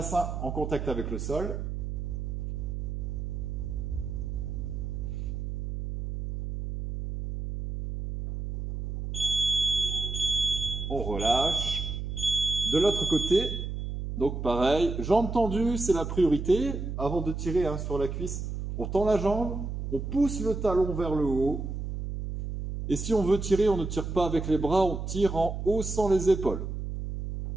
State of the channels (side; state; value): right; noise; hum, 5 dB below the sound